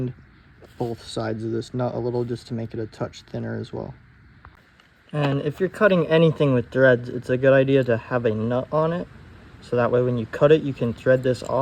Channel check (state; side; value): identical; both; correlation 1.00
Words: both sides of this nut a little just to make it a touch thinner as well. And if you're cutting anything with threads, it's a good idea to have a nut on it. So that way when you cut it, you can thread this